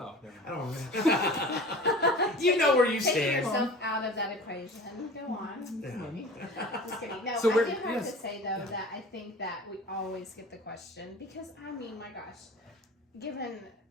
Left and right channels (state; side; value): normal; both; correlation 0.39